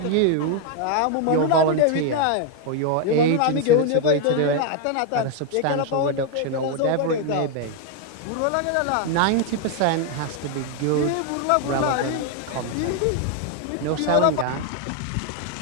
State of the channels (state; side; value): different; both; correlation 0.01